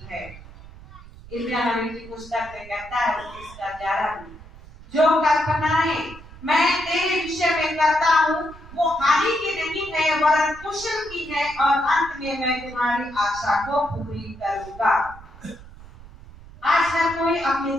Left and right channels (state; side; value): noise; right; rumble, 19 dB below the sound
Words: है। इब्रानियों नबी की पुस्तक में कहता है 11 में, जो कल्पनाएं मैं तेरे विषय में करता हूँ वो हानि की नहीं है, वरन कुशल की है, और अंत में मैं तुम्हारी आशा को पूरी करूंगा। आज हर कोई अपने